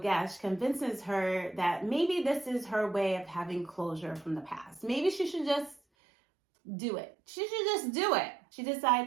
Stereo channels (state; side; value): drops out; left; at 5.8 s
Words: convinces her that maybe this is her way of having closure from the past. Maybe she should just do it. She